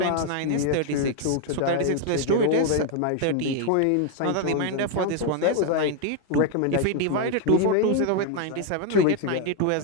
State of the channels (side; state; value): both; different; correlation 0.01